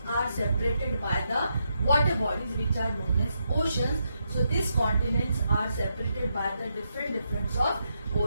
are separated by the water bodies which are known as oceans. So these continents are separated by the different of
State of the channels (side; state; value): both; inverted; correlation -0.81